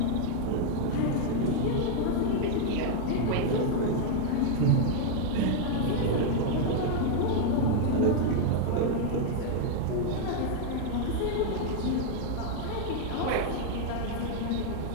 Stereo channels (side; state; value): both; different; correlation 0.00